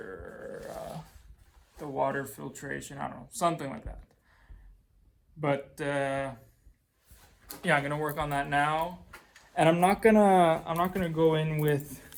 the water filtration, I don't know, something like that. But yeah, I'm gonna work on that now, and I'm not gonna go in with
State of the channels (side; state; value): both; identical; correlation 1.00